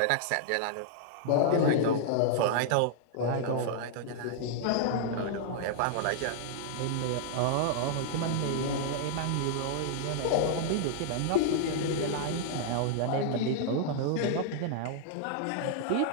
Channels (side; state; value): both; different; correlation -0.01